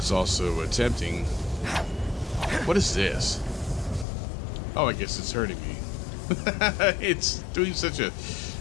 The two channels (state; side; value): drops out; right; at 4.0 s